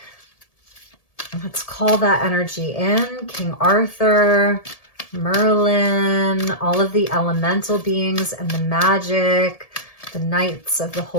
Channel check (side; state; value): right; late; 1.7 ms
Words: let's call that energy in. King Arthur, Merlin, all of the elemental beings and the magic, the Knights of the